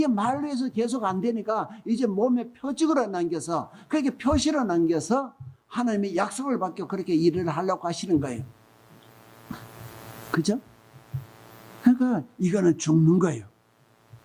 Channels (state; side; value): identical; both; correlation 1.00